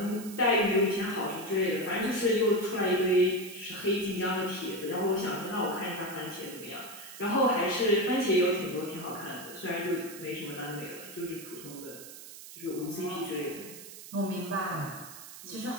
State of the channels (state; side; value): noise; right; hiss, 14 dB below the sound